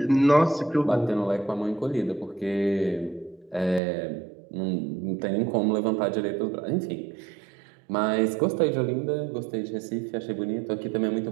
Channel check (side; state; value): left; drops out; at 3.8 s